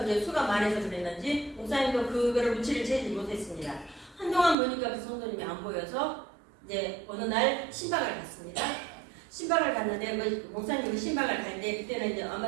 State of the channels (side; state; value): left; drops out; at 4.5 s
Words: 이제 수가 많아서 그랬는지 목사님도 그거를 무치를 채지 못했습니다. 한동안 보니까 그 성도님이 안 보여서 이제 어느 날 신방을 갔습니다. 신방을 갔는데 목사님이 신방을 갈 때 그때는 이제 아마